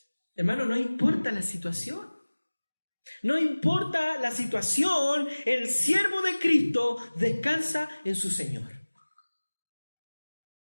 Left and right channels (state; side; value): inverted; both; correlation -1.00